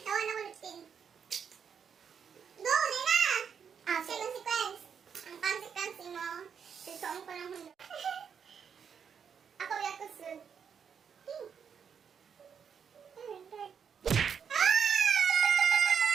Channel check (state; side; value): quieter; left; 7.1 dB